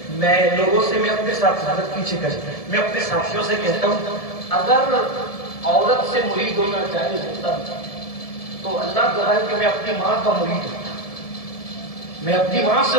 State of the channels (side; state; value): right; late; 1.7 ms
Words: میں لوگوں سے, میں اپنے ساتھ حضرت پیچھے کر, میں اپنے ساتھیوں سے کہتا ہوں اگر عورت سے مرید ہونا چاہے ہوتا تو اللہ گواہ کہ میں اپنی ماں کا مرید ہوتا. میں اپنی ماں سے